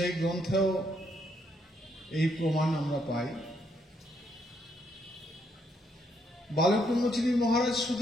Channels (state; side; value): normal; both; correlation 0.74